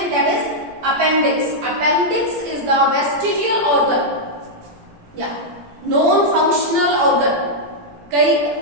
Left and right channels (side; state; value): left; late; 17 ms